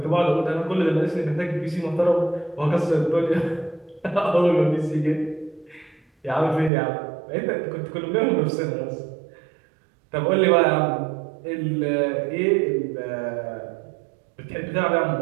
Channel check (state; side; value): drops out; left; at 6.7 s